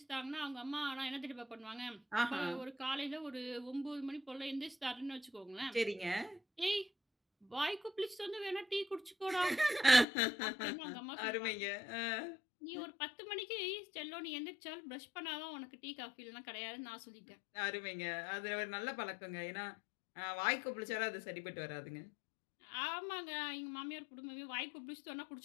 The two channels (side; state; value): right; drops out; at 10.1 s